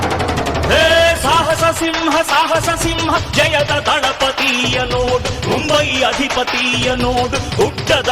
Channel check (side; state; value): both; identical; correlation 1.00